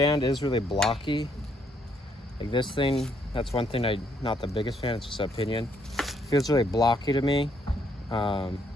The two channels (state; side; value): normal; both; correlation 0.71